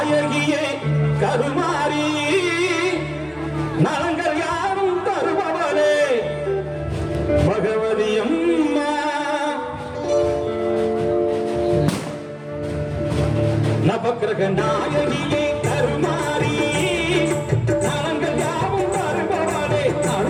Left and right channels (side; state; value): both; identical; correlation 1.00